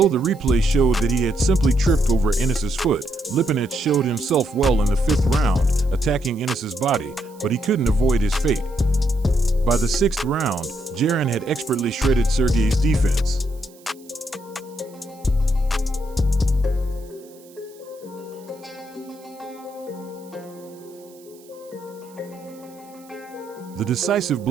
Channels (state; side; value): noise; right; hiss, 26 dB below the sound